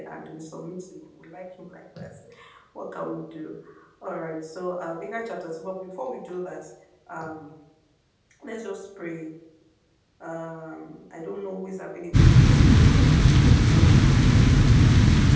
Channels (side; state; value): both; identical; correlation 1.00